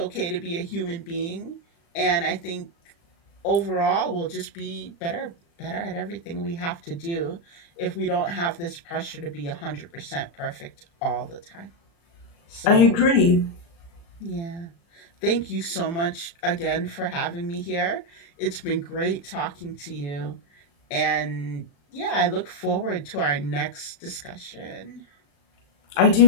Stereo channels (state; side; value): late; right; 35 ms